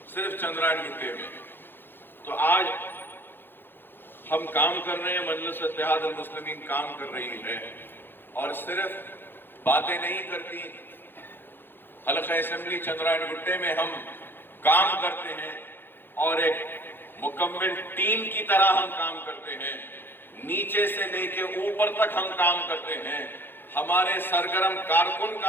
सिर्फ चंद्रायन गुट्टे में। तो आज हम काम कर रहे हैं, मजलिस इत्तेहाद अल मुस्लिमीन काम कर रही है और सिर्फ बातें नहीं करती। हल्क़े असेंबली चंद्रायन गुट्टे में हम काम करते हैं और एक मुकम्मल टीम की तरह हम काम करते हैं। नीचे से लेके ऊपर तक हम काम करते हैं। हमारे सरगर्म कारकुन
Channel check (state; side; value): late; right; 0.10 ms